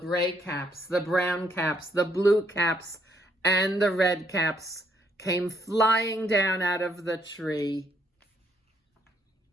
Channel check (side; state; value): both; normal; correlation 0.71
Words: caps, the brown caps, the blue caps, and the red caps came flying down out of the tree.